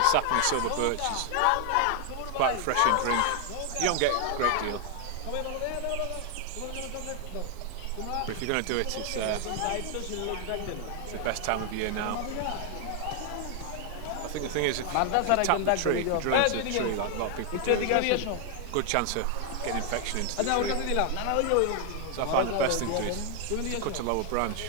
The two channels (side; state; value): both; different; correlation 0.00